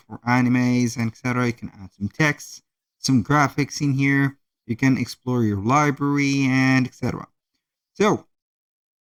for animes and etc. You can add some text, some graphics in here. You can explore your library and etc. So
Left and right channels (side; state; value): both; identical; correlation 1.00